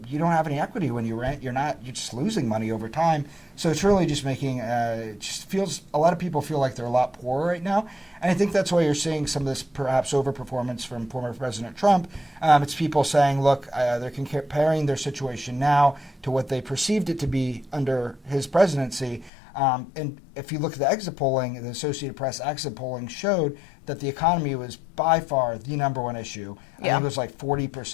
don't have any equity when you rent. You're just losing money over time. So it's really just making it just feels a lot of people feel like they're a lot poorer right now. And I think that's why you're seeing some of this perhaps overperformance from former President Trump. It's people saying, look, they're comparing their situation now to what they perceived it to be under his presidency. And if you look at the exit polling, the Associated Press exit polling showed that the economy was by far the number one issue. I think it was like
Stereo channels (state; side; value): drops out; right; at 19.3 s